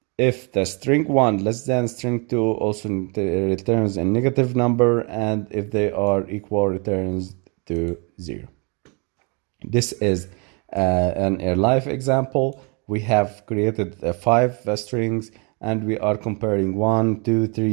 If the string 1 less than string 2, also returns a negative number, and if they are equal, returns to 0. This is a live example. We have created 5 strings, and we are comparing 1, 2,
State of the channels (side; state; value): left; quieter; 33.2 dB